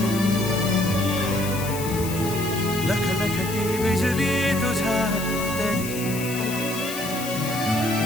लखलखती बिजली तुझ्या तरी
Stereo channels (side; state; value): left; noise; hiss, 9 dB below the sound